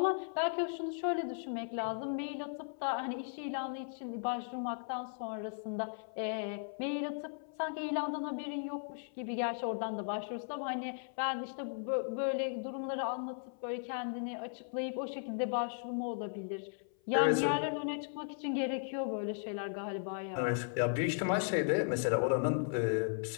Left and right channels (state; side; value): silent; right; 53 dB below the other